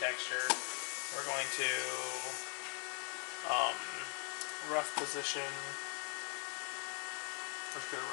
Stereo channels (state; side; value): quieter; right; 39.4 dB